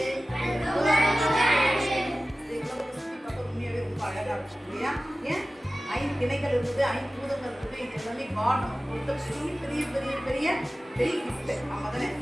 ஏன் 5 திணைகள் இருக்குது, 5 பூதங்கள் இருக்குது. இது எல்லாமே காட் நமக்கு கொடுத்த பெரிய பெரிய பெரிய பெரிய கிஃப்ட். நம்ம தானே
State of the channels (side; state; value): both; normal; correlation 0.96